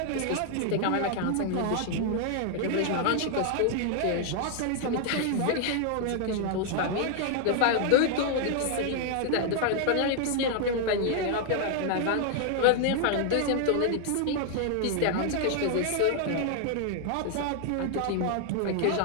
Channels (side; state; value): both; different; correlation 0.00